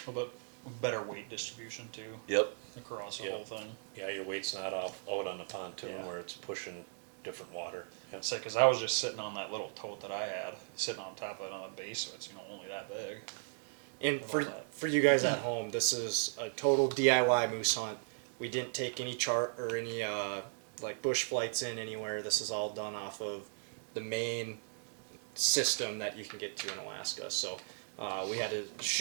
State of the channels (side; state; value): left; silent; digital silence